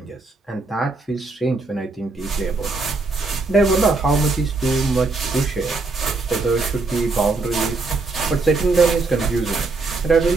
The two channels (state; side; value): quieter; left; 3.6 dB